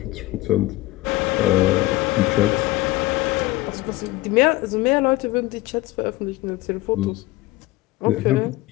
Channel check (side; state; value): right; quieter; 18.6 dB